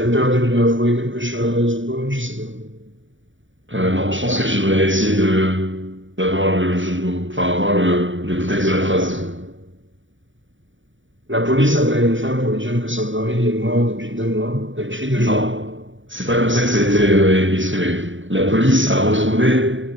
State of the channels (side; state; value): left; late; 0.56 ms